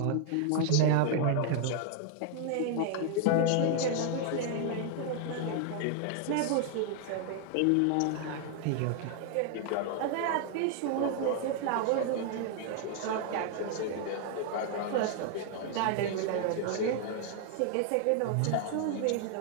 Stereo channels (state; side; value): different; both; correlation 0.00